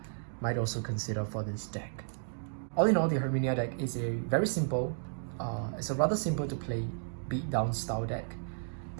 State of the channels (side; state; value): left; silent; digital silence